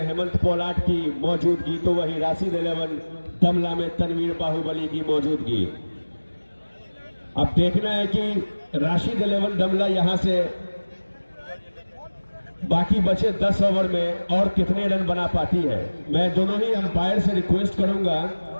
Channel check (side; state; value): both; inverted; correlation -1.00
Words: हेमंत पोलाट की मौजूदगी, तो वही राशिद 11 दमला में तनवीर बाहुबली की मौजूदगी। अब देखना है कि राशिद 11 दमला यहां से बाकी बचे 10 ओवर में और कितने रन बना पाती है। मैं दोनों ही अंपायर से रिक्वेस्ट करूंगा